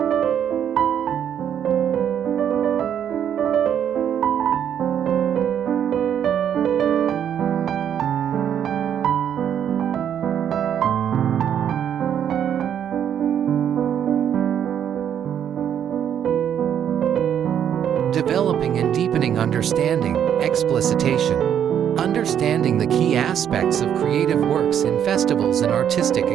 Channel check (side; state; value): left; quieter; 9.2 dB